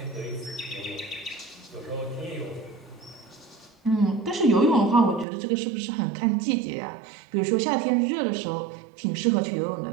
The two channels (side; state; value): left; drops out; at 5.2 s